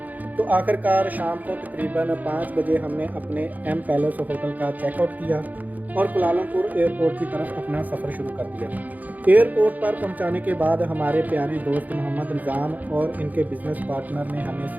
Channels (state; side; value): late; left; 0.081 ms